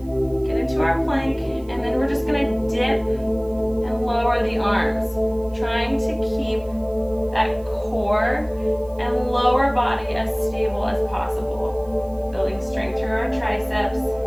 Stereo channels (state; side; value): noise; right; hiss, 28 dB below the sound